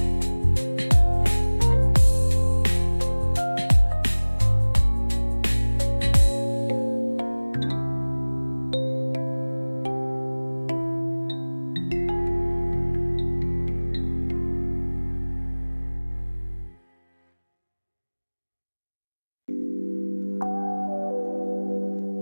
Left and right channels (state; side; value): inverted; both; correlation -1.00